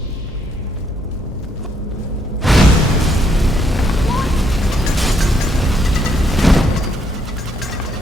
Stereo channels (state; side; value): normal; both; correlation 0.72